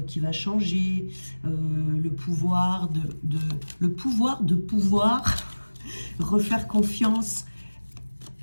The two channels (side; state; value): both; inverted; correlation -1.00